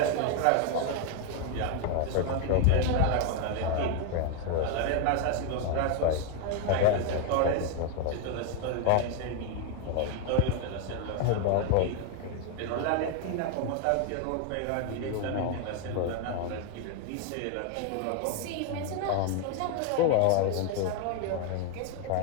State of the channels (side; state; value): both; different; correlation 0.01